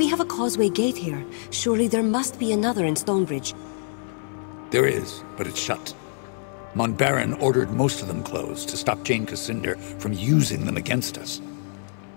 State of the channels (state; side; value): silent; right; 57 dB below the other